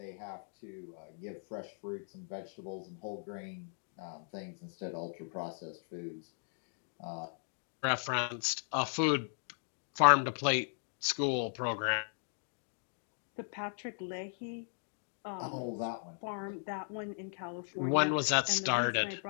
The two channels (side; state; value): right; silent; digital silence